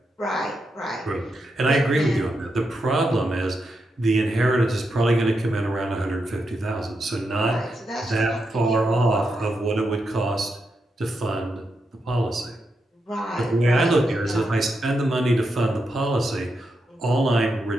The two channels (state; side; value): normal; both; correlation 0.85